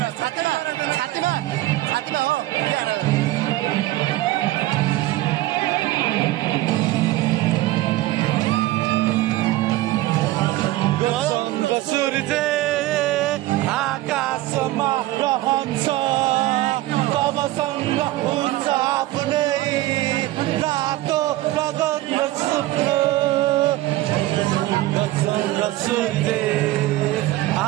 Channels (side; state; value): left; quieter; 17.0 dB